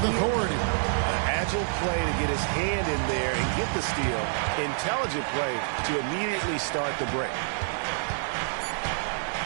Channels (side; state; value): left; silent; digital silence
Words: authority. Agile play to get his hand in there and get the steal. Intelligent play to immediately start the break.